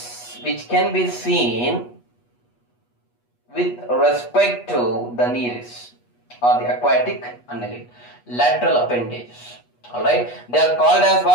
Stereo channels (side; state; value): right; late; 8.3 ms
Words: which can be seen with respect to the Neris or the aquatic annelid. Lateral appendages, alright. They are called as